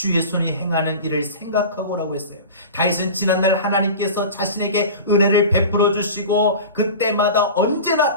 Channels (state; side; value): inverted; both; correlation -0.33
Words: 손이 행하는 일을 생각하고 라고 했어요. 다윗은 지난날 하나님께서 자신에게 은혜를 베풀어 주시고 그때마다